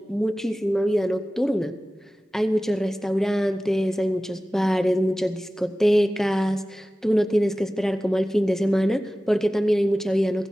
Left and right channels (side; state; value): both; normal; correlation 0.96